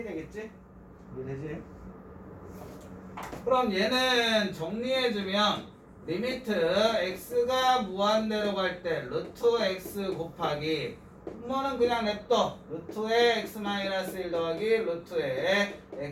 되겠지? 이게 되지? 그럼 얘는 정리해주면 리미트 x가 무한대로 갈 때 루트 x 곱하기 분모는 그냥 냅둬. 루트에 x 마이너스 1 더하기 루트에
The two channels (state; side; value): identical; both; correlation 1.00